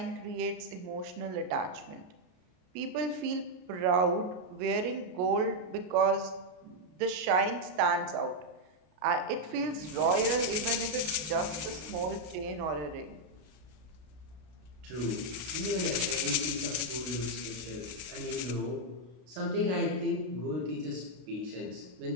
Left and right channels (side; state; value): left; late; 32 ms